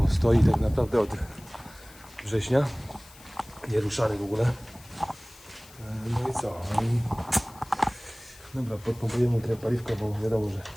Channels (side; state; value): left; noise; hiss, 22 dB below the sound